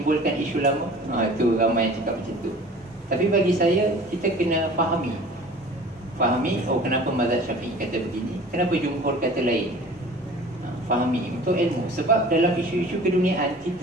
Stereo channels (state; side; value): normal; both; correlation 0.44